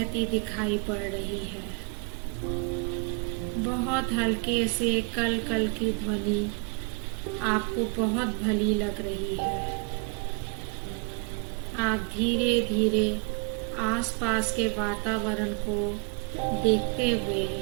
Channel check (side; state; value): left; quieter; 33.0 dB